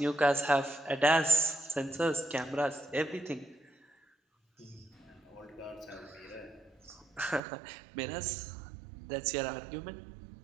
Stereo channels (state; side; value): drops out; left; at 7.4 s